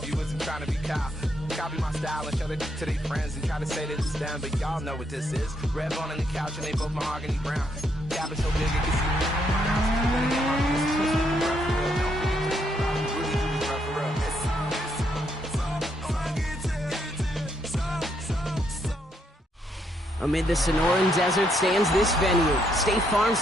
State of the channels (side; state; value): both; normal; correlation 0.75